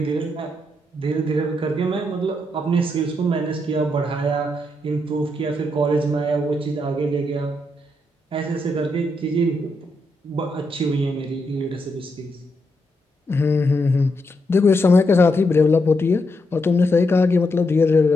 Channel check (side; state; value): both; normal; correlation 0.81